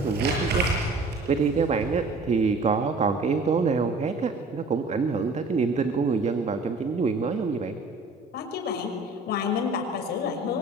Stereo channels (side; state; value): left; quieter; 3.1 dB